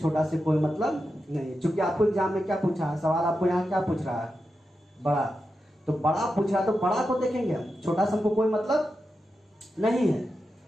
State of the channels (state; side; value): normal; both; correlation 0.89